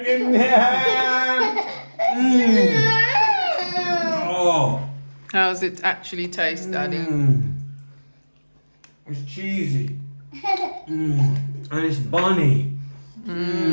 Oh. How's it actually taste, Daddy? It's cheesy. And it's bunny.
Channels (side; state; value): both; inverted; correlation -1.00